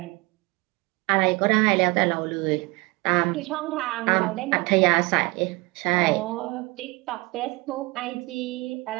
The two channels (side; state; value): left; quieter; 24.9 dB